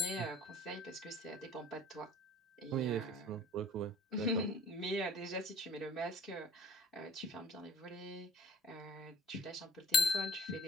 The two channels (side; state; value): both; normal; correlation 0.52